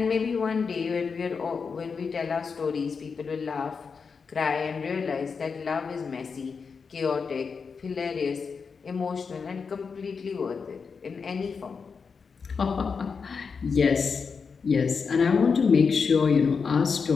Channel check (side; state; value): right; quieter; 5.4 dB